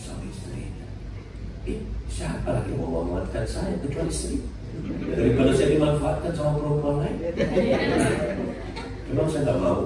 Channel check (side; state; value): both; identical; correlation 1.00